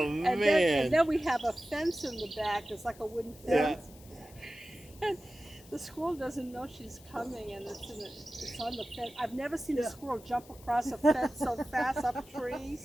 and man. then we have a fence in the back. It's like a wooden Yeah. fence. And the squirrel doesn't know she's coming, and it's on the fence. I've never seen a Yeah. squirrel jump across a fence so fast up trees.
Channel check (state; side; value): noise; left; hiss, 23 dB below the sound